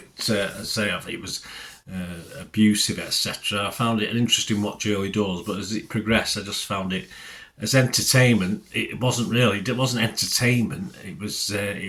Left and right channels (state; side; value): identical; both; correlation 1.00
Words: was abusive, etc., I found it an interesting watch early doors. But as it progressed, I just found it, as entertainment, it wasn't entertainment. It